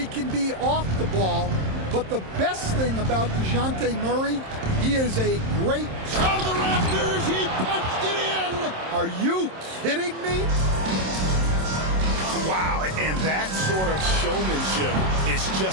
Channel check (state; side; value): late; left; 27 ms